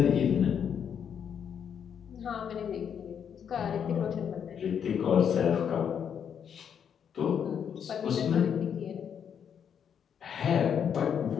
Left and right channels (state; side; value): quieter; right; 8.0 dB